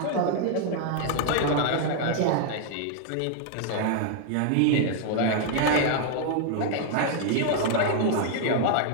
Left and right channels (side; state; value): both; different; correlation 0.00